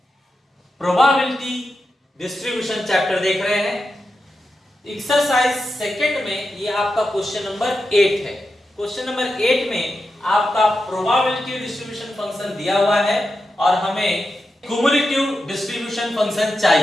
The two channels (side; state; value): both; normal; correlation 0.89